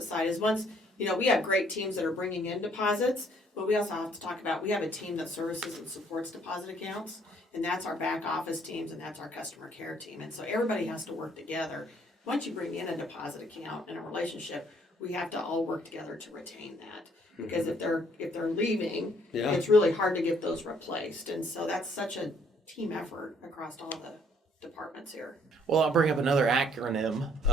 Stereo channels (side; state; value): both; normal; correlation 0.64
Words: side, is once, we have great teams that are bringing in deposits, but we also have to talk about, we have a team that services and supports deposit accounts, and that's our back office teams, and that's our customer care team. And so everybody has to work together. Once you bring in a deposit account and a relationship, we have to all work together to retain that. Because if they're leaving, it's really hard to get those replaced. And so that's such a team effort across all the departments here. Well, I'll bring up another